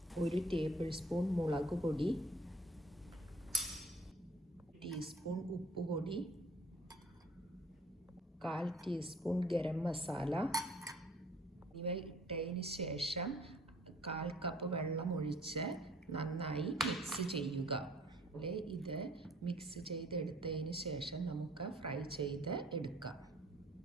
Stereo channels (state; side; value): normal; both; correlation 0.55